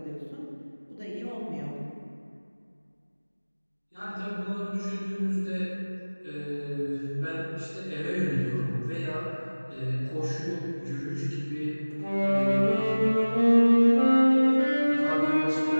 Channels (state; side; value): inverted; both; correlation -1.00